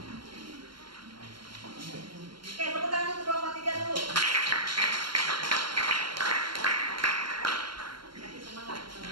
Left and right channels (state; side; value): late; left; 0.73 ms